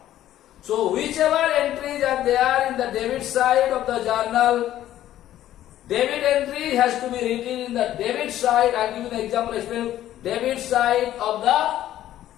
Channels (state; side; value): quieter; right; 12.8 dB